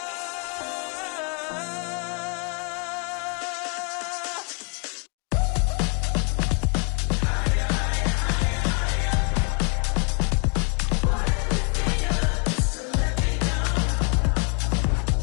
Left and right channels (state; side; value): quieter; right; 37.2 dB